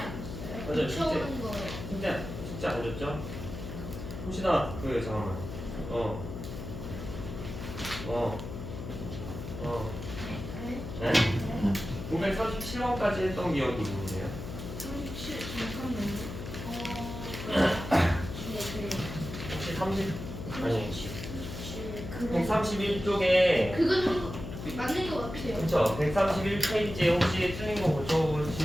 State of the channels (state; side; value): noise; left; hum, 8 dB below the sound